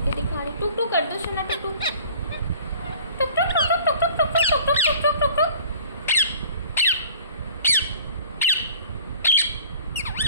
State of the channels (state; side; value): inverted; both; correlation -0.50